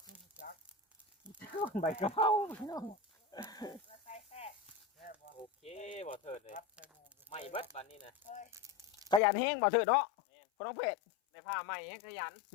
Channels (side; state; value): right; drops out; at 9.2 s